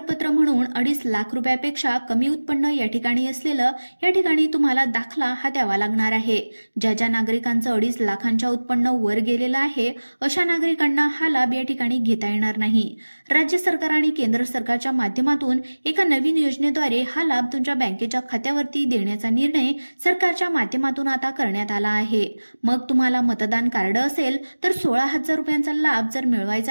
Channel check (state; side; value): inverted; both; correlation -1.00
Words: म्हणून 2.5 लाख रुपयापेक्षा कमी उत्पन्न या ठिकाणी असलेलं या ठिकाणी तुम्हाला दाखला हा द्यावा लागणार आहे. ज्या ज्या नागरिकांचं 2.5 लाखांच्या उत्पन्न वर गेलेलं आहे अशा नागरिकांना हा लाभ या ठिकाणी घेता येणार नाही. राज्य सरकार आणि केंद्र सरकारच्या माध्यमातून एका नवीन योजनेद्वारे हा लाभ तुमच्या बँकेच्या खात्यावरती देण्याचा निर्णय सरकारच्या माध्यमातून आता करण्यात आला आहे. मग तुम्हाला मतदान कार्ड असेल तर 16,000 रुपयांचा लाभ जर